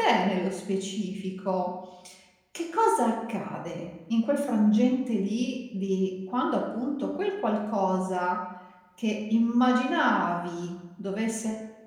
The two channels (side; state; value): both; identical; correlation 1.00